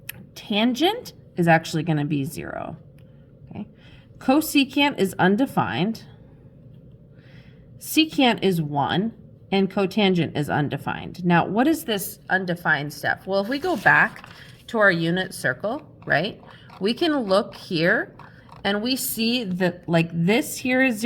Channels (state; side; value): identical; both; correlation 1.00